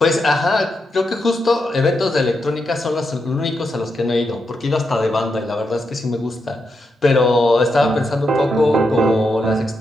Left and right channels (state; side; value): normal; both; correlation 0.84